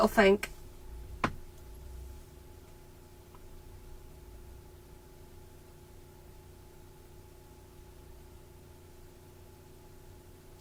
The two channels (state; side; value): identical; both; correlation 1.00